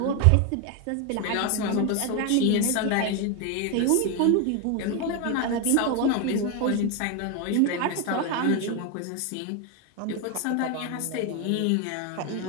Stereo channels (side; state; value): both; different; correlation 0.01